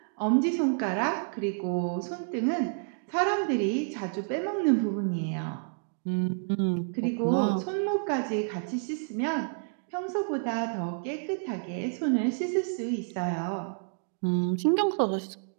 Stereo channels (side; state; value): left; silent; digital silence